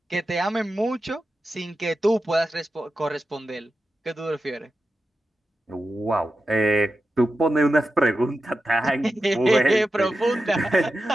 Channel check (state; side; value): normal; both; correlation 0.91